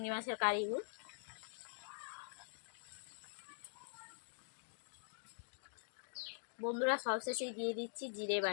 মাছের কারিগুলো। বন্ধুরা সবশেষে দিয়ে দিচ্ছি জিরে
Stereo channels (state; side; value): silent; right; digital silence